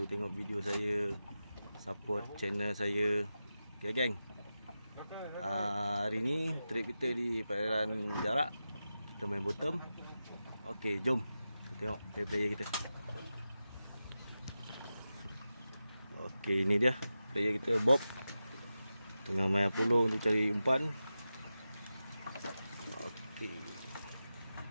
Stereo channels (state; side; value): inverted; both; correlation -0.92